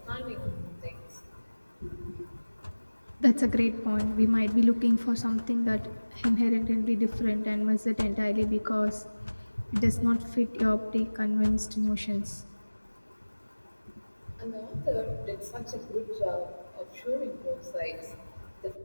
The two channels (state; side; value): inverted; both; correlation -1.00